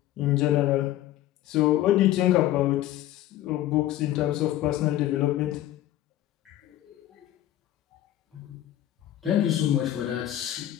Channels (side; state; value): right; quieter; 13.6 dB